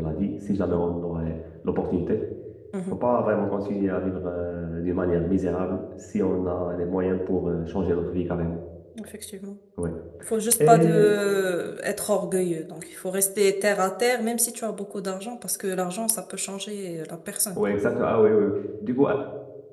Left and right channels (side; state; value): both; identical; correlation 1.00